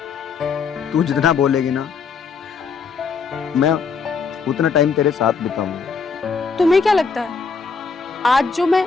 तू जितना बोलेगी ना, मैं उतना टाइम तेरे साथ बिताऊंगा। तुम्हें क्या लगता है आज जो मैं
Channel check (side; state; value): right; quieter; 5.4 dB